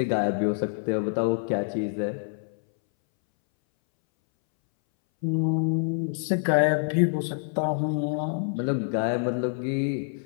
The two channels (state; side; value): silent; right; 61 dB below the other